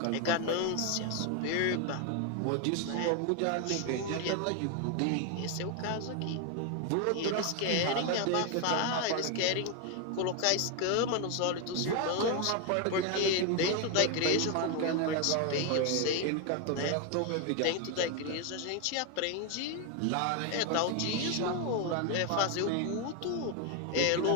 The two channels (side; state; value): both; different; correlation 0.01